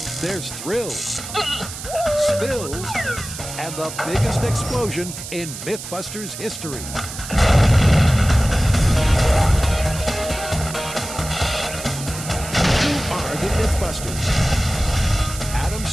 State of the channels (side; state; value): right; noise; hiss, 10 dB below the sound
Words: There's thrills, spills, and the biggest explosion in MythBusters history. Who are the MythBusters? Adam